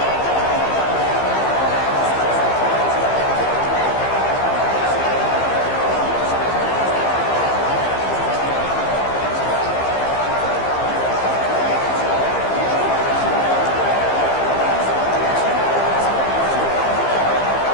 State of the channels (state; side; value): late; right; 15 ms